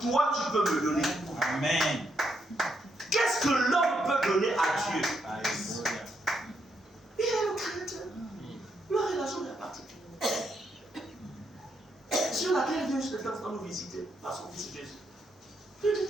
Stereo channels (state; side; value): normal; both; correlation 0.78